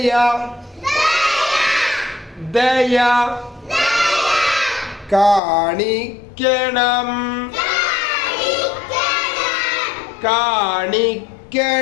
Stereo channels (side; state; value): right; drops out; at 5.4 s